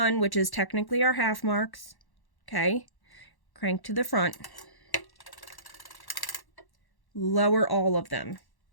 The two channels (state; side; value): late; right; 1.1 ms